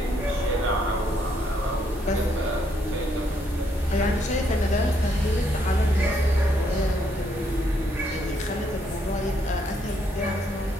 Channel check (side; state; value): both; normal; correlation 0.73